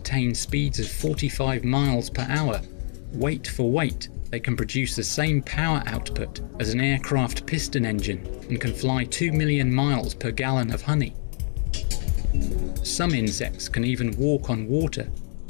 speeds of 45 miles per hour. Weight for weight, they can produce the same power output as an aircraft piston engine and can fly 2 million miles per gallon of honey. Some insects can even walk on water.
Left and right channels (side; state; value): right; silent; digital silence